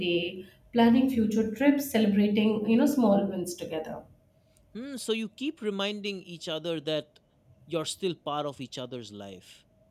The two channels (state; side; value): identical; both; correlation 1.00